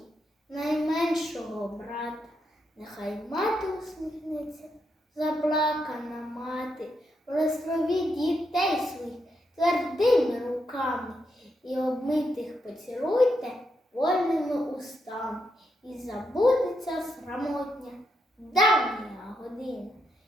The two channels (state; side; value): normal; both; correlation 0.81